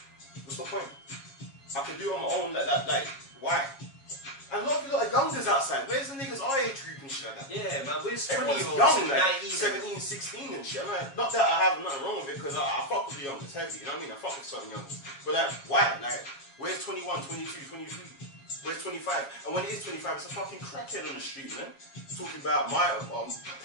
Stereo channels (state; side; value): late; right; 7.3 ms